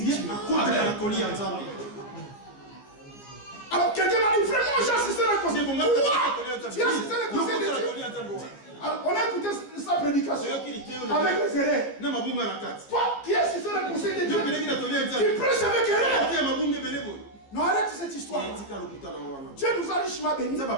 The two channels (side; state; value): right; late; 15 ms